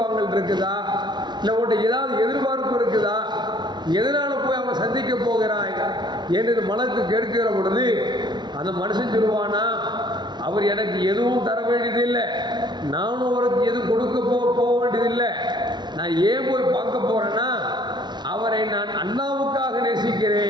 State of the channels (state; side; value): late; left; 0.21 ms